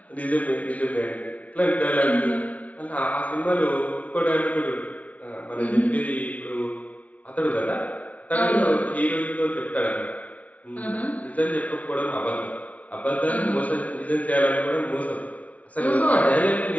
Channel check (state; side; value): late; right; 0.068 ms